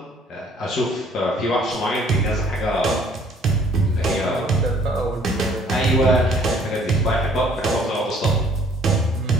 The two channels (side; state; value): both; normal; correlation 0.58